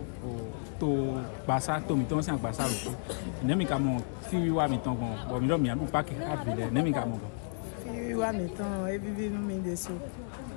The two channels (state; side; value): silent; right; digital silence